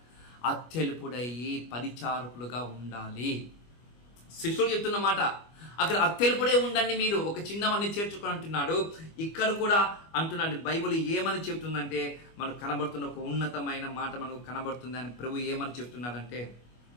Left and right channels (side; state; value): right; late; 25 ms